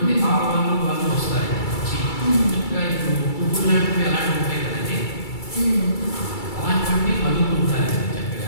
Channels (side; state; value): right; late; 2.3 ms